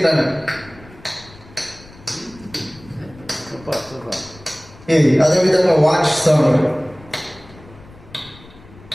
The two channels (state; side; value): noise; left; rumble, 22 dB below the sound